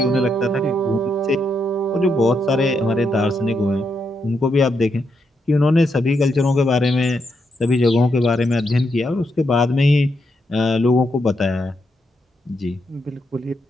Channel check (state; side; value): normal; both; correlation 0.81